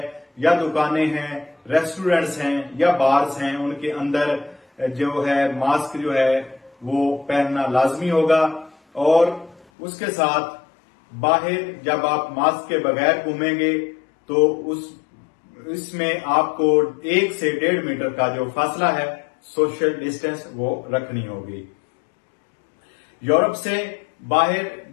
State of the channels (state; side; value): drops out; right; at 9.7 s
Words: या दुकानें हैं, रेस्टोरेंट्स हैं या बार्स हैं, उनके अंदर जो है मास्क जो है वो पहनना लाजमी होगा। और उसके साथ बाहर जब आप मास्क के बगैर घूमेंगे तो इसमें आपको 1 से 1.5 मीटर का जो फासला है, सोशल डिस्टेंस, वो रखनी होगी। यूरोप से बाहर